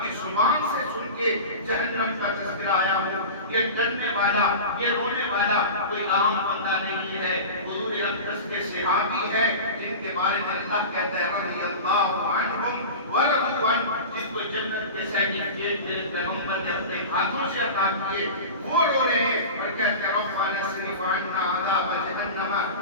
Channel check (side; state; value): both; inverted; correlation -0.30